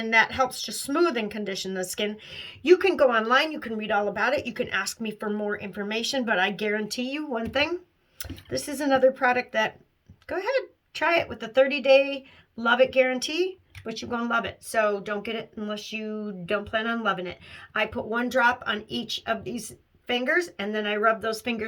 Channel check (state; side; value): identical; both; correlation 1.00